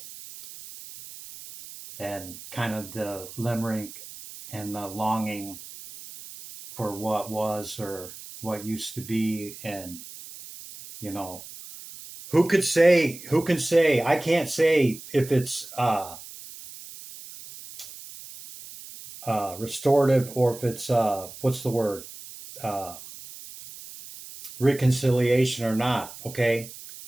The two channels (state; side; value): noise; right; hiss, 15 dB below the sound